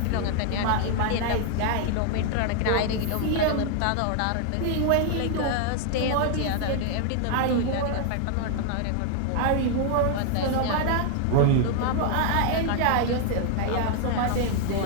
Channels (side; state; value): both; different; correlation 0.00